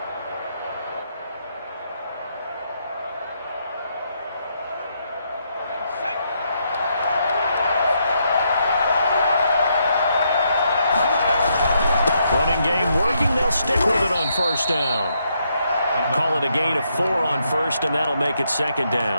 Running game working. They'll stick with it on 1st down. Call it a gain of 4 on 1st, and that'll make it 2nd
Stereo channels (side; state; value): both; inverted; correlation -0.77